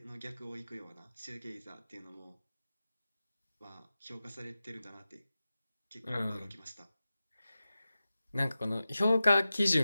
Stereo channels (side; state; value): both; inverted; correlation -0.94